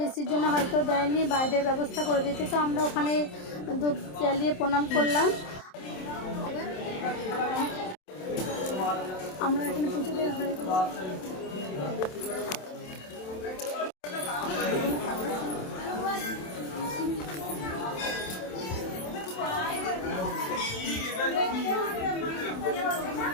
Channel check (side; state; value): right; late; 27 ms